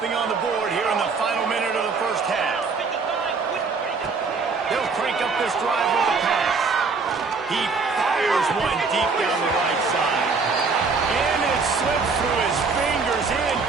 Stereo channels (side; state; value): left; quieter; 4.6 dB